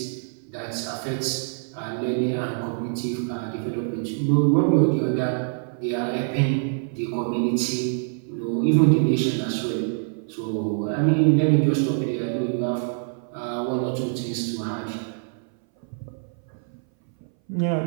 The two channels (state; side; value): silent; left; 60 dB below the other